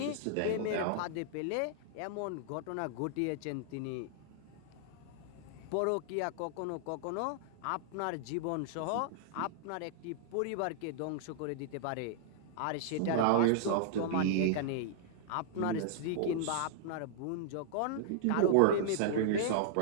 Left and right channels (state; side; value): different; both; correlation -0.01